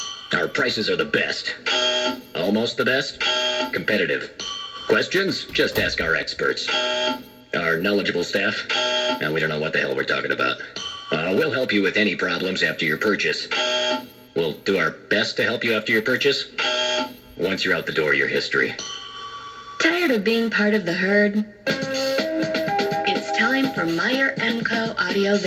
Our prices are the best. Almost the best. Competitive. Questions? Just ask our experts. Our knowledgeable staff? Now, we don't know what the hell we're talking about. We'll help you with any problems after your purchase. We'll do our best to help you after your purchase. Once you're out the door, your history. Tired of being part of the herd? It's time for Meyer MCO Audio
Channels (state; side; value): identical; both; correlation 1.00